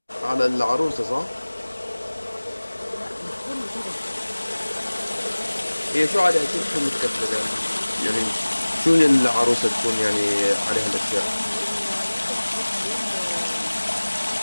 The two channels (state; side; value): inverted; both; correlation -1.00